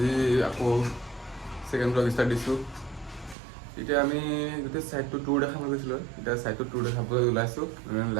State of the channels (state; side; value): drops out; left; at 3.4 s